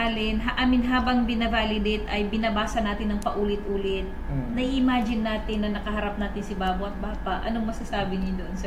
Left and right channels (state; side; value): identical; both; correlation 1.00